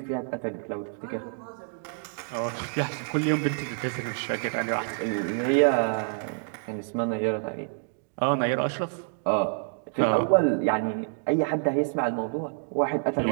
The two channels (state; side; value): silent; left; digital silence